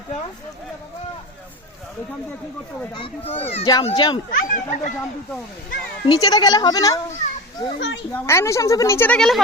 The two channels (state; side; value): normal; both; correlation 0.27